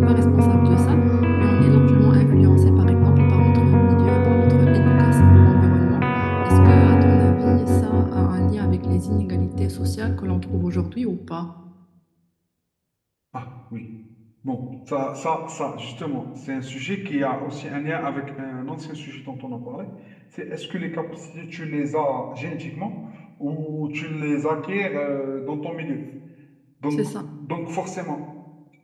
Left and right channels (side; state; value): both; identical; correlation 1.00